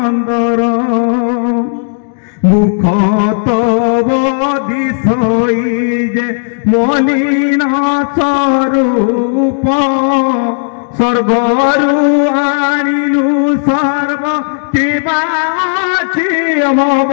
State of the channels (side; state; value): right; silent; digital silence